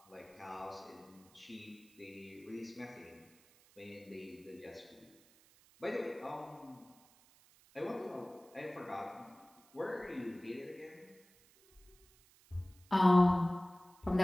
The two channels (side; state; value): right; noise; hiss, 27 dB below the sound